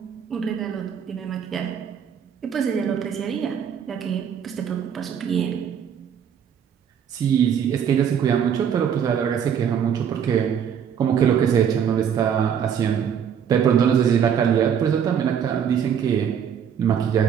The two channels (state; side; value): quieter; left; 8.2 dB